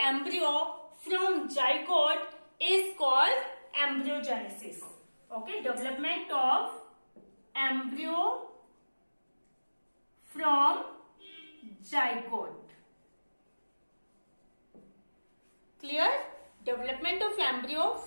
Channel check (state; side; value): inverted; both; correlation -1.00